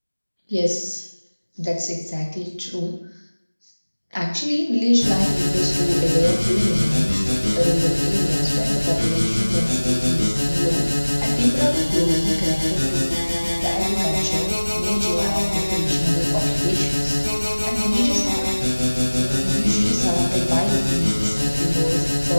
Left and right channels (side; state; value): both; inverted; correlation -1.00